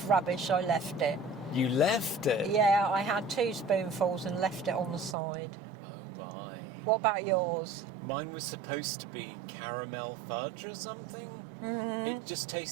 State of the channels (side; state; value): left; drops out; at 5.2 s